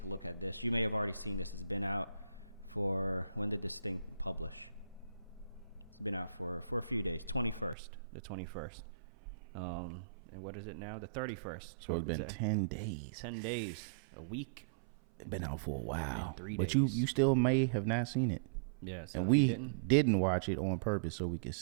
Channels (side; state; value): left; drops out; at 7.8 s